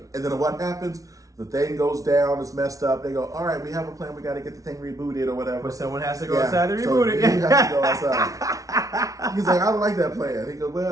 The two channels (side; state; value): left; late; 0.17 ms